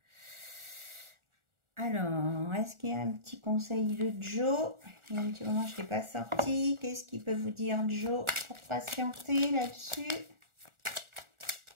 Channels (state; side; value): late; left; 1.4 ms